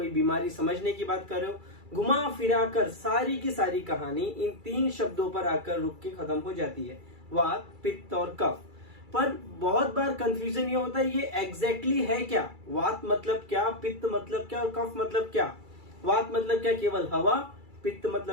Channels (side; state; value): left; late; 2.3 ms